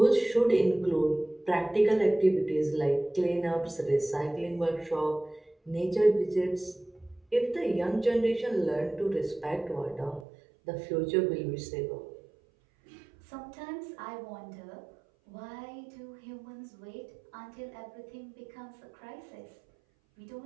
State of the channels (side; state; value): left; drops out; at 10.2 s